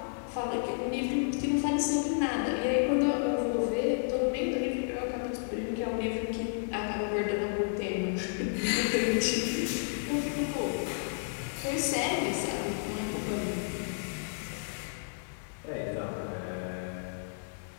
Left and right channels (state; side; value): silent; right; digital silence